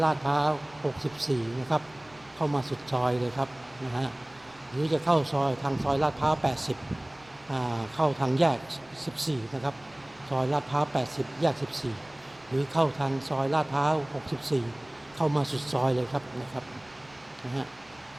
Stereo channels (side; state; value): right; noise; rumble, 27 dB below the sound